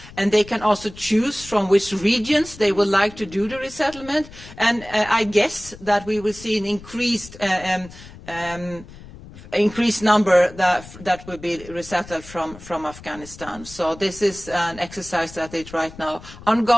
And they can also choose from which regions they would like to do the resettlement. And I guess that we will see an increased increased number that will be resettled from Afghanistan. So this is an exercise that is right now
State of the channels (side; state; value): left; noise; rumble, 18 dB below the sound